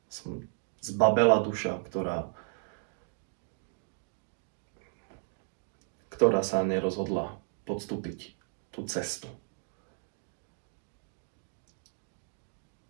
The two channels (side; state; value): left; silent; 55 dB below the other